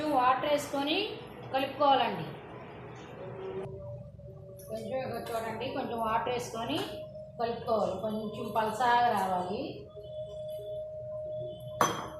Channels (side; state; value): both; identical; correlation 1.00